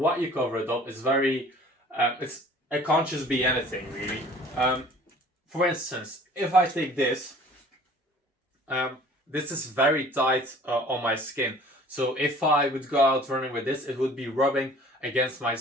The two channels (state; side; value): normal; both; correlation 0.50